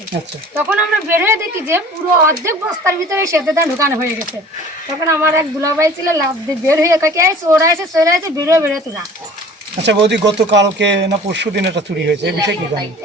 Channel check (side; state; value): both; normal; correlation 0.46